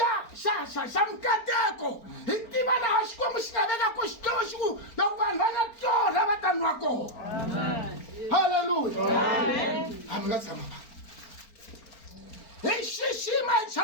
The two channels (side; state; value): right; late; 4.4 ms